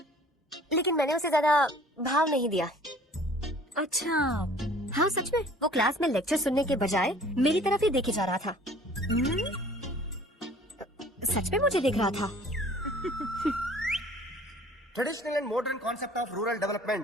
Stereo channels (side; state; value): both; normal; correlation 0.51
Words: लेकिन मैंने उसे ज्यादा भाव नहीं दिया। अच्छा। हाँ सच में, वो क्लास में लेक्चर सुनने के बजाय मेरी तरफ ही देखे जा रहा था। सच में मुझे देख रहा था। Traditional and modern concept of rural